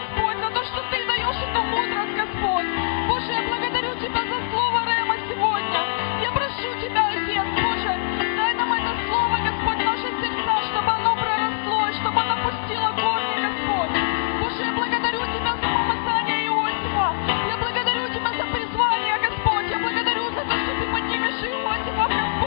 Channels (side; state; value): right; silent; digital silence